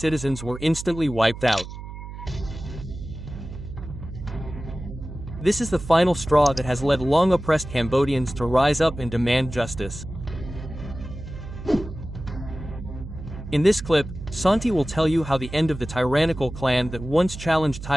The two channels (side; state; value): right; noise; hum, 11 dB below the sound